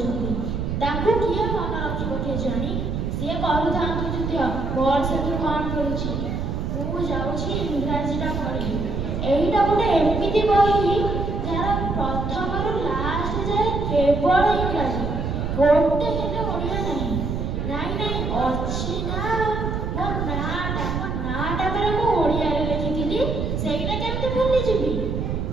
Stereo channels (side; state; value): right; noise; rumble, 2 dB below the sound